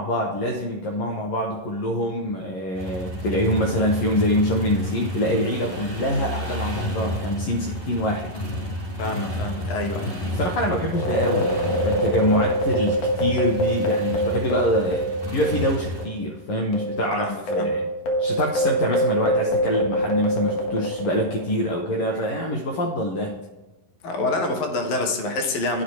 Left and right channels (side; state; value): right; late; 11 ms